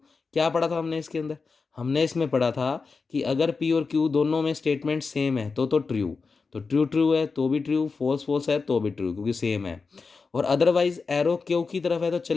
क्या पढ़ा था हमने इसके अंदर, हमने इसमें पढ़ा था कि अगर पी और क्यू दोनों में स्टेटमेंट सेम है तो ट्रू, तो ट्रू ट्रू है तो भी ट्रू, फॉल्स फॉल्स है तो भी ट्रू, क्योंकि सेम है। और अदरवाइज एरो क्यू की तरफ है तो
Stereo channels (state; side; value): quieter; right; 4.6 dB